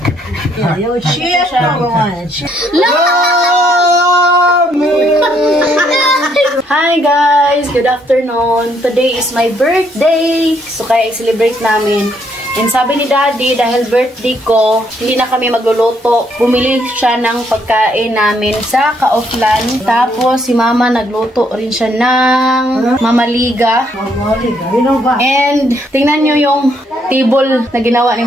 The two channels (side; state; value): both; normal; correlation 0.71